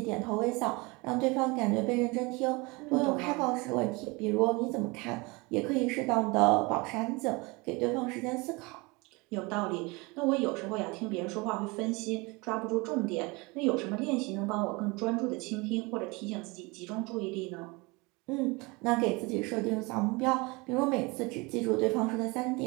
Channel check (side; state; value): left; quieter; 26.0 dB